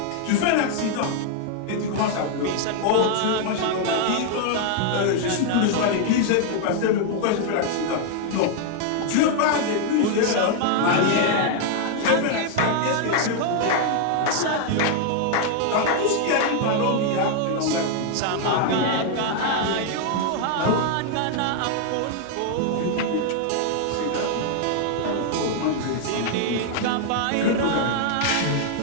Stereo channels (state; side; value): different; both; correlation 0.00